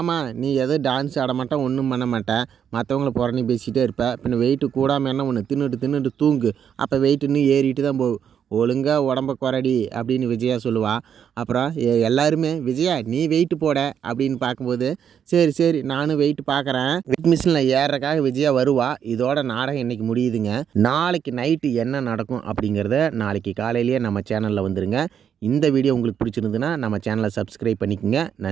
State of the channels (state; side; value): quieter; left; 8.3 dB